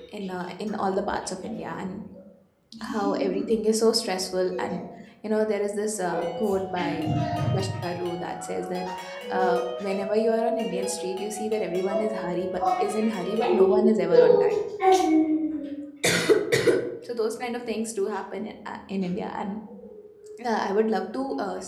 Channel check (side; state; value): both; identical; correlation 1.00